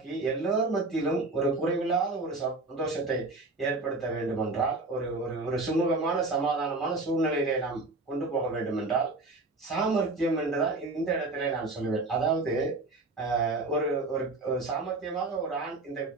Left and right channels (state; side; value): quieter; left; 3.2 dB